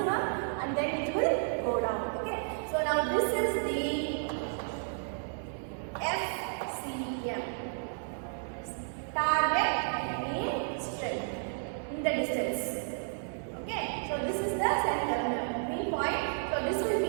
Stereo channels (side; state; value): left; silent; 56 dB below the other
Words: and then it will go down. Okay, so now this is the FCM, target mean strength in the distance. Okay, so this is the center mean point. So this will